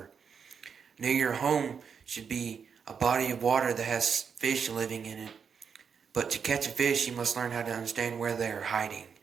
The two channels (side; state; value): left; quieter; 6.5 dB